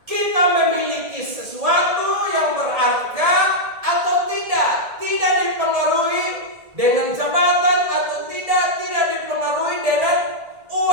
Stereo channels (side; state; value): left; late; 1.7 ms